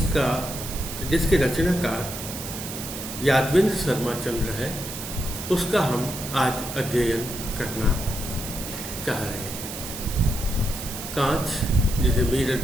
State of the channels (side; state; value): right; noise; hiss, 8 dB below the sound